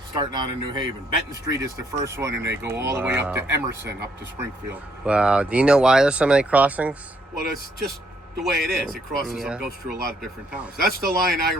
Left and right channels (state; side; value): normal; both; correlation 0.70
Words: Starting out in New Haven. Benton Street is the first one, and they go all the way up to Emerson, up to Springfield. Wow. Do you know why there's so many crossings? Well, it's just the way it is. It crosses and goes through a lot of different towns. That's the line I